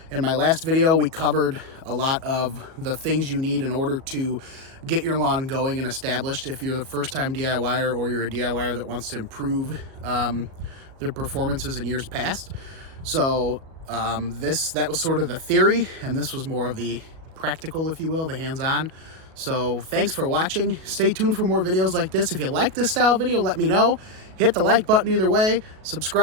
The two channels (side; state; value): left; late; 37 ms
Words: In my last video, we covered a lot of the things you need in order to get your lawn going and established if you're the first-time DIYer or you're a DIYer that wants to improve their performances in years past. So that was sort of the theory, and this was more of the practical, if you will, the hands-on. So thanks for watching. Stay tuned for more videos like this. If you like this style video, let me know. Hit the like button either way,